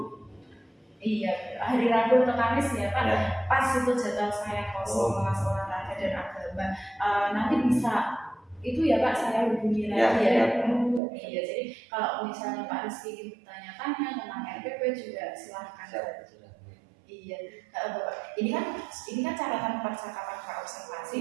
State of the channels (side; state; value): left; drops out; at 11.0 s